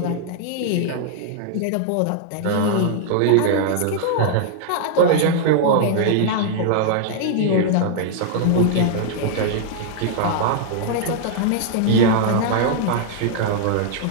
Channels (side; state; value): both; different; correlation -0.01